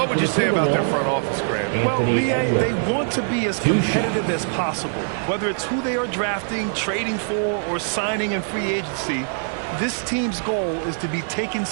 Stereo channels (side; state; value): left; silent; digital silence